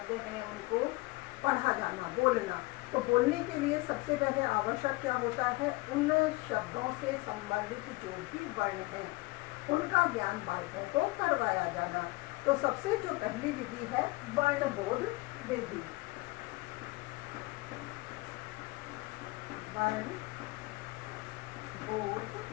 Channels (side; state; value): right; quieter; 23.1 dB